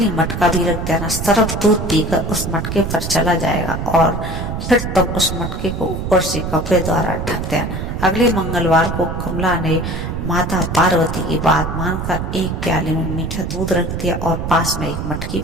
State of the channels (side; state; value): right; noise; rumble, 4 dB below the sound